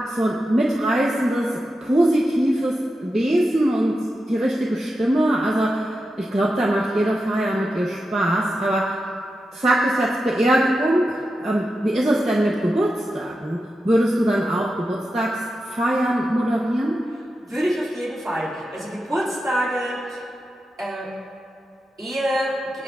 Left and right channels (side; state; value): both; normal; correlation 0.90